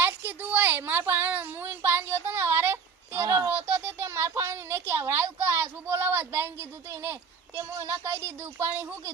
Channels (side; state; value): left; quieter; 5.8 dB